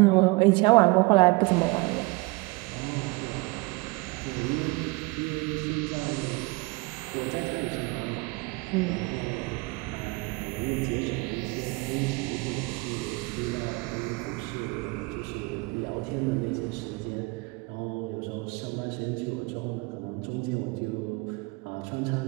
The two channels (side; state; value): left; quieter; 25.4 dB